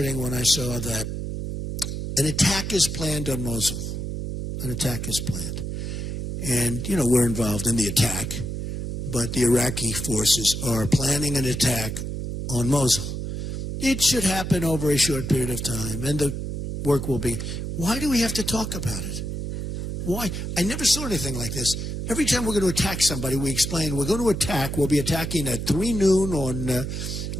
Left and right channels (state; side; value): noise; right; hum, 4 dB below the sound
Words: when I saw that an attack is planned on Mosul. An attack is planned. And, we're involved in the attack, but the Iraqi forces are planning an attack on Mosul. It should happen over a short period of time, and the work will be. Why do we have to talk about it? Why? I never saw anything like this. Every time we're going to attack somebody, we explain we're going to attack. We'll be attacking at 3 noon on